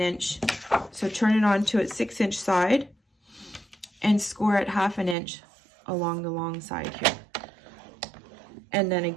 So turn it on to its 6-inch side and score at 1/2 inch along the long side here. And then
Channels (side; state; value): left; drops out; at 5.2 s